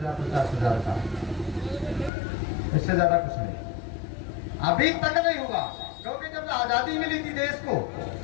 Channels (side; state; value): right; drops out; at 2.1 s